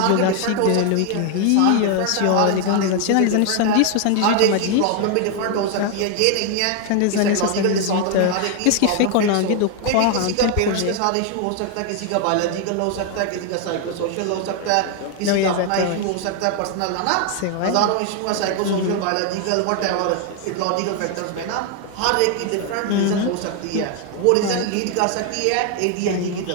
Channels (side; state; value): both; different; correlation 0.01